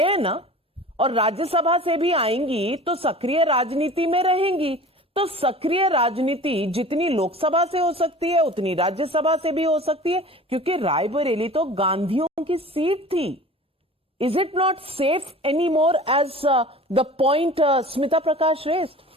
ना, और राज्यसभा से भी आएंगी तो सक्रिय राजनीति में रहेंगी। तो सक्रिय राजनीति जितनी लोकसभा से हो सकती है उतनी राज्यसभा से भी हो सकती है, क्योंकि रायबरेली तो गांधियों की सीट थी। Is it not safe anymore as the point Smita Prakash raised?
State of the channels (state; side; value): normal; both; correlation 0.40